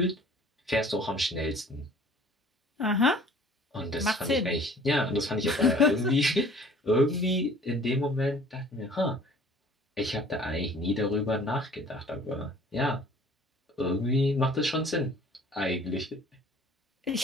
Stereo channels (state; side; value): normal; both; correlation 0.51